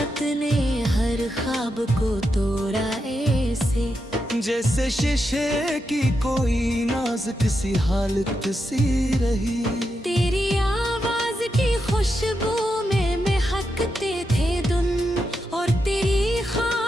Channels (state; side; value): normal; both; correlation 0.85